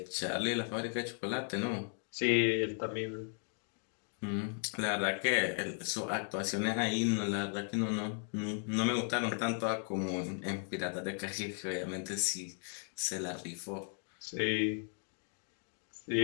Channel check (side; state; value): right; silent; 54 dB below the other